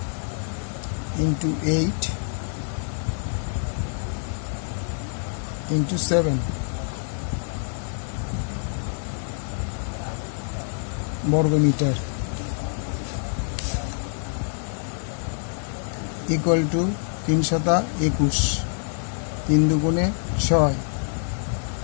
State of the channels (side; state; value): right; silent; digital silence